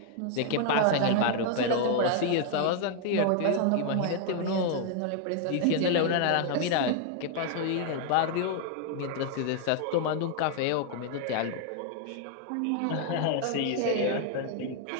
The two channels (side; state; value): both; different; correlation 0.00